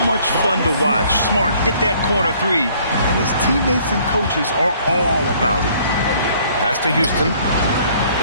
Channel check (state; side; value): inverted; both; correlation -0.60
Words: much fun to watch. Smart hit that corner 3, and his teammates and coaches are all about it. Pass to Houston.